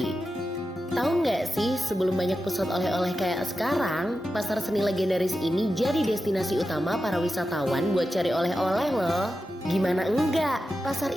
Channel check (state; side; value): normal; both; correlation 0.91